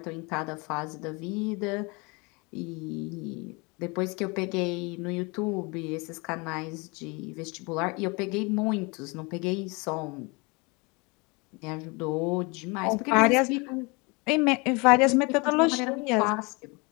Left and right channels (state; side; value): quieter; right; 28.4 dB